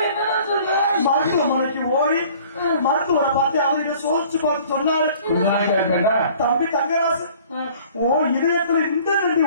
மருத்துவமனைக்கு ஓடி மருத்துவரை பார்த்து அவர்கிட்ட சோதிச்சு பார்த்து சொன்னாரு, தம்பி தங்கராசு ஓ இதயத்துல இந்த நன்றி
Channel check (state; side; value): inverted; both; correlation -0.51